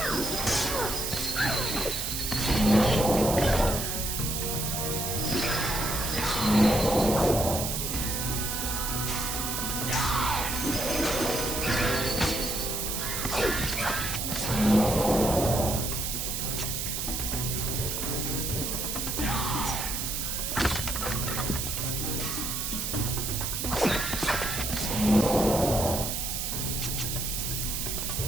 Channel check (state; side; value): noise; right; hiss, 2 dB below the sound